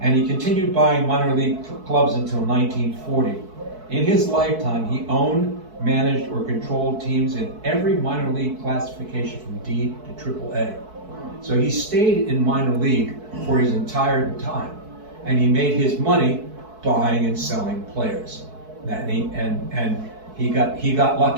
and he continued buying minor league clubs until 1940. In his lifetime, he owned, managed, or controlled teams in every minor league classification from D to AAA. So he stayed in minor league for his entire time, and he made his money buying and selling players. And he got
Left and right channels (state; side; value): late; left; 4.6 ms